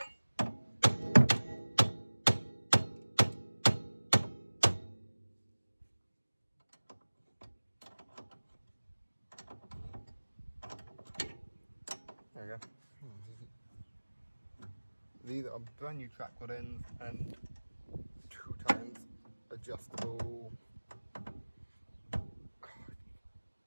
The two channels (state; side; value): inverted; both; correlation -1.00